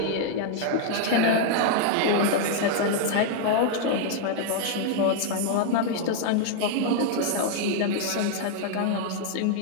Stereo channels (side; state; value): both; different; correlation 0.00